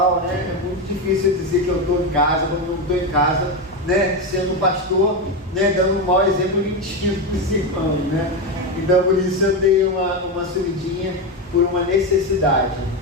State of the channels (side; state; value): both; normal; correlation 0.13